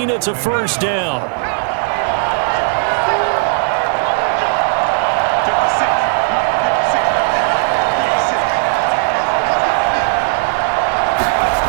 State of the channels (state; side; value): silent; left; digital silence